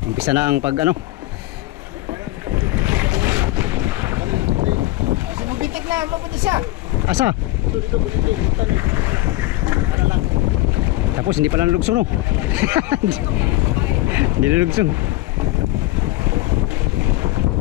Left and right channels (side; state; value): right; quieter; 18.0 dB